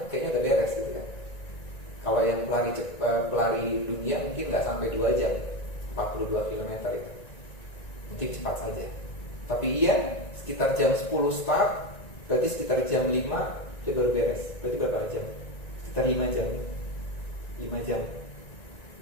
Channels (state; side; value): late; right; 1.9 ms